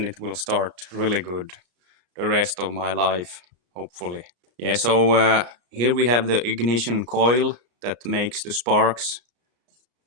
it will start really good the rest of my life, hopefully. Yeah, so here we have the ignition coil that makes the sparks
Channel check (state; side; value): late; left; 33 ms